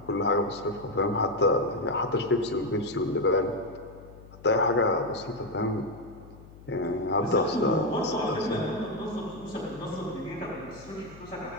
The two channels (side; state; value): left; noise; hum, 19 dB below the sound